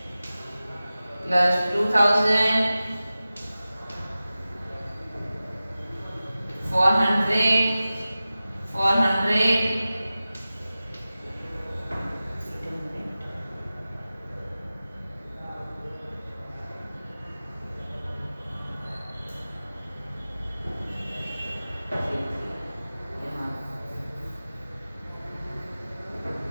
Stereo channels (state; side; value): inverted; both; correlation -0.96